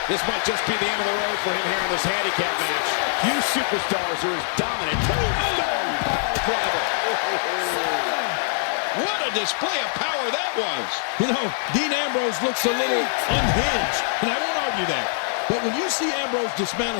This might just be the end of the road for him here in this handicap match. Few superstars are as dominant. Tombstone pile driver. What a display of power that was. You know, Dean Ambrose looks a little unhinged, and I won't argue that. But when you see Ambrose dismantle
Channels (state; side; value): silent; right; digital silence